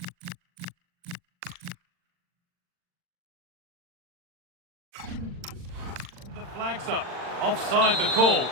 the flag's up. Offside the call.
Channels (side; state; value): left; late; 40 ms